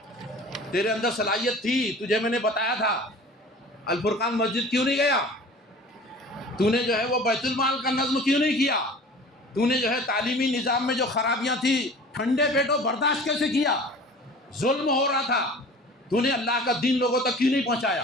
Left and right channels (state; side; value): normal; both; correlation 0.42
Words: تیرے اندر صلاحیت تھی, تجھے میں نے بتایا تھا, الفرقان مسجد کیوں نہیں گیا؟ تو نے جو ہے وہ بیت المال کا نظم کیوں نہیں کیا؟ تو نے جو ہے تعلیمی نظام میں جو خرابیاں تھیں ٹھنڈے پیٹوں برداشت کیسے کیا؟ ظلم ہو رہا تھا, تو نے اللہ کا دین لوگوں تک کیوں نہیں